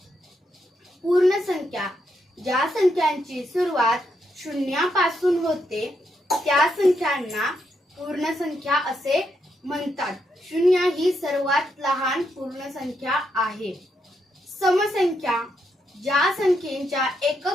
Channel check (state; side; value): normal; both; correlation 0.80